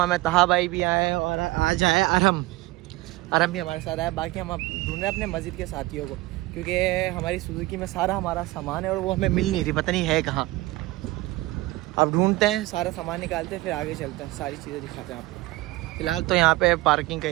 में तहा भाई भी आए और आज आए अरम भी हमारे साथ आया। बाकी हम अब ढूंढ रहे हैं अपने मस्जिद के साथियों को, क्योंकि हमारी सुजुकी में सारा हमारा सामान है और वो हमें मिल नहीं रही, पता नहीं है कहाँ। अब ढूंढते हैं, सारा सामान निकालते हैं, फिर आगे चलते हैं, सारी चीज़ें दिखाते हैं आपको। फिलहाल तो यहाँ पे पार्किंग का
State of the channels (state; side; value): quieter; left; 19.8 dB